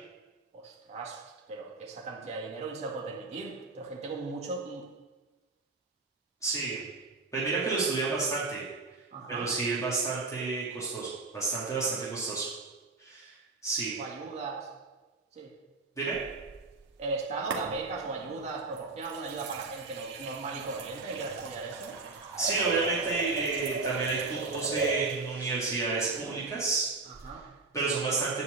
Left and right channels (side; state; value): left; quieter; 3.7 dB